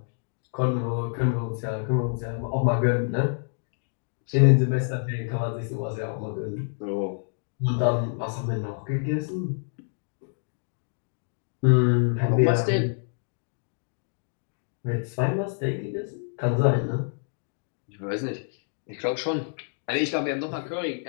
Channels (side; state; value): right; silent; digital silence